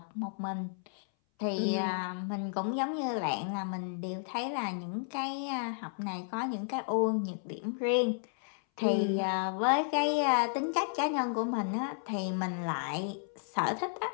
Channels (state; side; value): silent; right; 56 dB below the other